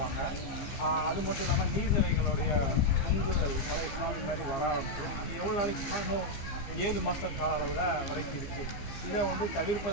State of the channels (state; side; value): late; right; 15 ms